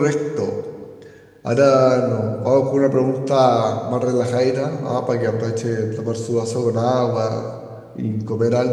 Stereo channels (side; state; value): both; identical; correlation 1.00